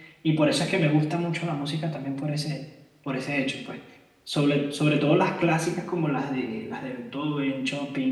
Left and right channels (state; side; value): identical; both; correlation 1.00